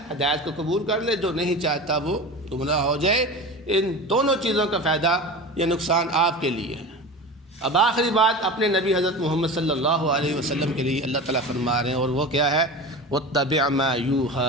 ہدایت کو قبول کر لے، جو نہیں چاہتا وہ گمراہ ہو جائے۔ ان دونوں چیزوں کا فائدہ یا نقصان آپ کے لیے ہے۔ اب آخری بات اپنے نبی حضرت محمد صلی اللہ علیہ وسلم کے لیے اللہ تعالیٰ فرما رہے ہیں، اور وہ کیا ہے؟ وَاتَّبِعْ مَا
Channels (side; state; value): both; normal; correlation 0.31